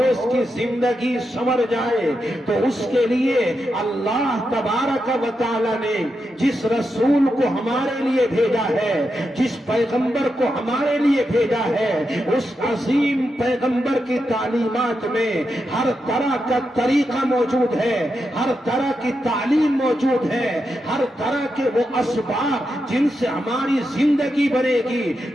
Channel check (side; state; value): both; normal; correlation 0.86